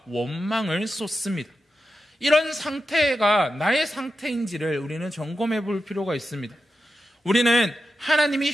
원망을 쏟습니다. 이런 상태가 나의 상태인지를 우리는 점검해 볼 필요가 있습니다. 우리는 하나님이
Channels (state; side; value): normal; both; correlation 0.89